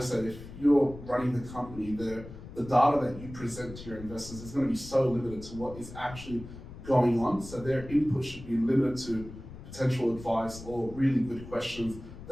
if you're running the company, the data that you present to your investors is going to be so limited to what is actually going on. So their input should be limited to potential advice or really good questions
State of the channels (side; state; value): left; noise; rumble, 14 dB below the sound